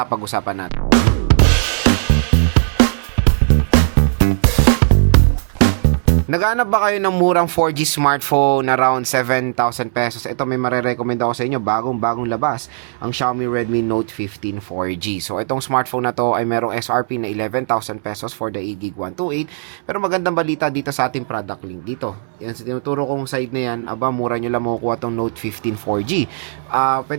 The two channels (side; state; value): left; silent; digital silence